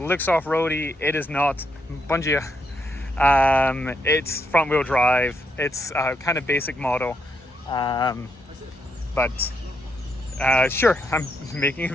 off-roady. It is not. Bom dia. It's front-wheel drive. It's kind of basic model, but sure, I'm making a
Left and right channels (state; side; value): normal; both; correlation 0.78